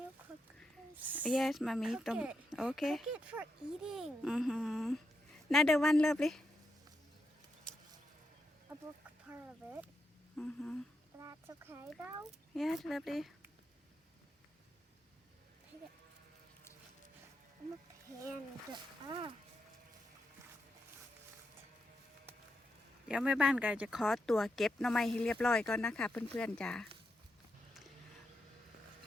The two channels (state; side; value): normal; both; correlation 0.84